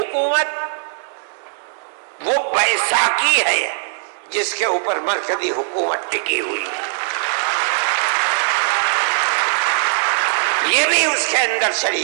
وہ بیساکھی ہے جس کے اوپر مرکزی حکومت ٹکی ہوئی ہے، یہ بھی اس کے اندر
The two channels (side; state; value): left; silent; digital silence